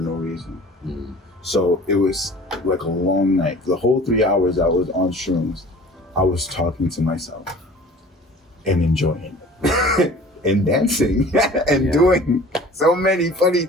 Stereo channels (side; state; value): both; normal; correlation 0.45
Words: reason. So it was like a long night. The whole 3 hours I was on shrooms, I was talking to myself and enjoying it. And dancing and doing so many funny